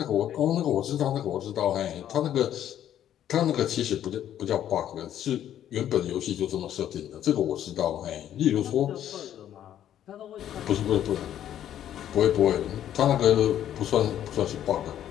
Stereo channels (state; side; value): quieter; right; 10.9 dB